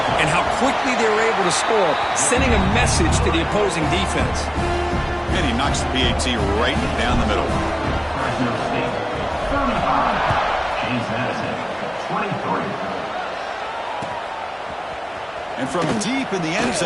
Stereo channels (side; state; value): both; identical; correlation 1.00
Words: and how quickly they were able to score, sending a message to the opposing defense. And he knocks the PAT right down the middle. Fresno State, 35. James Madison, 23. And from deep in the end